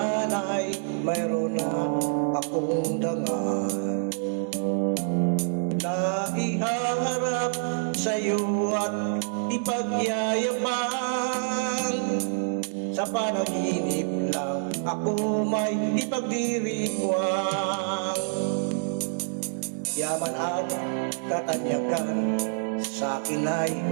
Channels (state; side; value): silent; left; digital silence